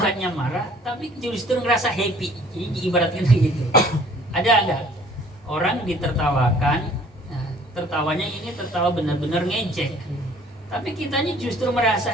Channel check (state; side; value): normal; both; correlation 0.55